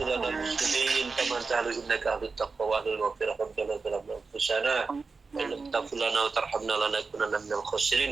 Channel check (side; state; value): left; quieter; 4.4 dB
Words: muslimin kama ta'ala innaka ahlut taqwa wa ahlul maghfirah. Rabbana zalamna anfusana wa illam taghfir lana wa tarhamna lanakunanna minal